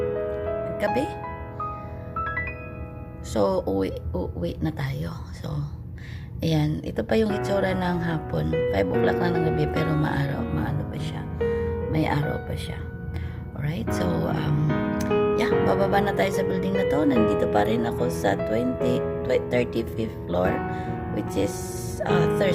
gabi. So uwi na tayo. So ayan, ito pa yung itsura ng hapon. 5 o'clock na ng gabi pero maano pa siya. May araw pa siya. Alright, so yeah, bababa na tayo sa building na to. Nandito pa rin ako sa 35th floor, which is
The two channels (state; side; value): identical; both; correlation 1.00